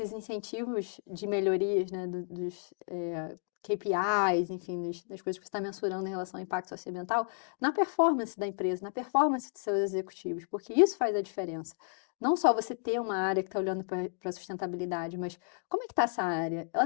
incentivos de melhorias, né, dos, KPIs, enfim, das coisas que você está mensurando em relação ao impacto socioambiental, na performance da empresa, na performance dos seus executivos, porque isso faz a diferença. Não só você ter uma área que está olhando para a sustentabilidade, mas como é que está essa área?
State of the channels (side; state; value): right; silent; 55 dB below the other